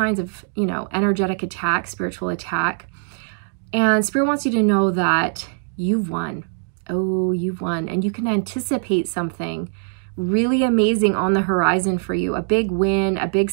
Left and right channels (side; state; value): left; silent; 65 dB below the other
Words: of, energetic attack, spiritual attack. And Spirit wants you to know that you've won. Oh, you've won. And you can anticipate something really amazing on the horizon for you, a big win, a big